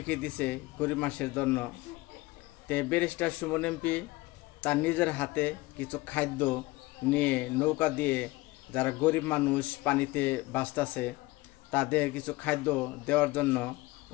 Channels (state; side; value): quieter; right; 20.7 dB